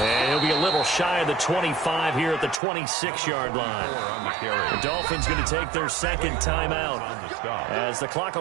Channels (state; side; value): drops out; left; at 2.6 s